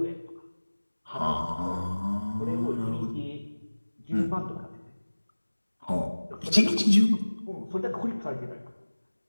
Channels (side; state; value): both; inverted; correlation -1.00